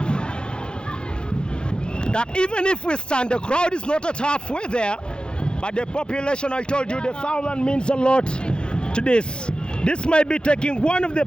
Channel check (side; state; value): right; late; 0.049 ms